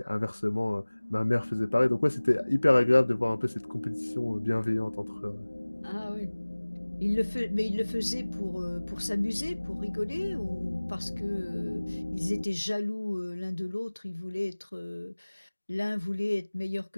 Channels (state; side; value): inverted; both; correlation -1.00